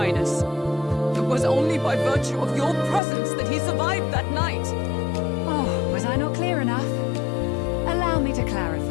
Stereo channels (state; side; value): drops out; right; at 3.0 s